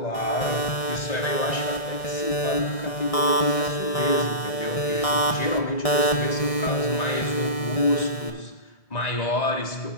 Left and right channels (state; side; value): late; right; 1.6 ms